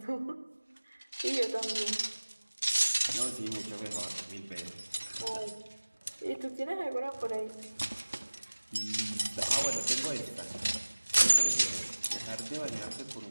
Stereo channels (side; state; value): both; inverted; correlation -1.00